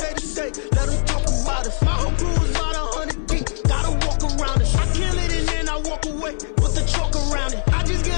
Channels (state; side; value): silent; right; digital silence